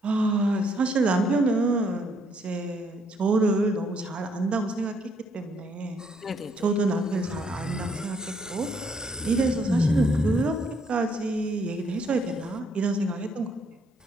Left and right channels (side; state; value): both; normal; correlation 0.70